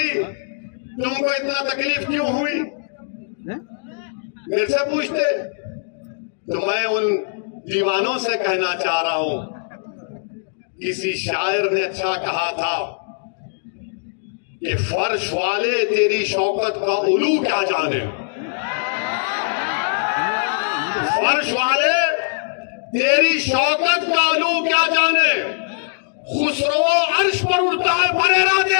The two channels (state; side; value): silent; right; digital silence